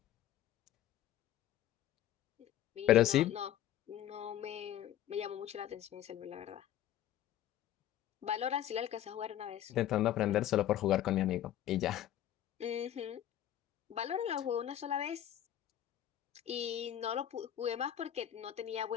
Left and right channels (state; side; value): quieter; right; 11.8 dB